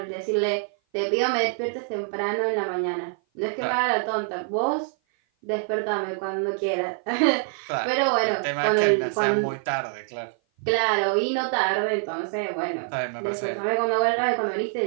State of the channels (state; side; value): silent; left; 56 dB below the other